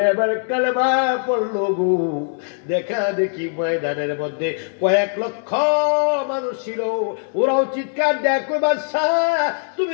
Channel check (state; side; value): silent; right; digital silence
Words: এবার কালেমা পড়লো গো। দেখা দেখি ময়দানের মধ্যে কয়েক লক্ষ মানুষ ছিল, ওরাও চিৎকার দেয় কই বাদশা